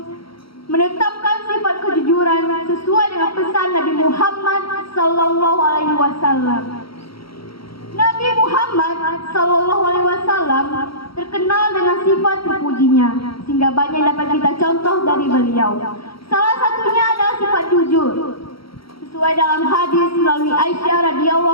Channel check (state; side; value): late; right; 0.75 ms